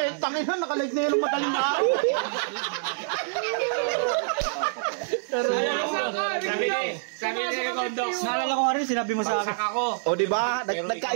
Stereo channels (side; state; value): left; silent; digital silence